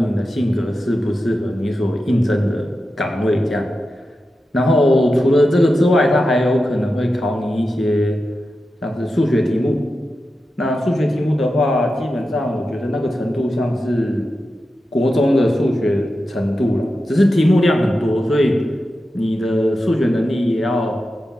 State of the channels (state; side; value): normal; both; correlation 0.91